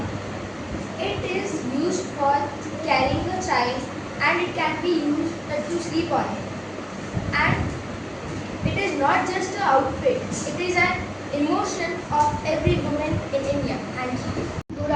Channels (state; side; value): identical; both; correlation 1.00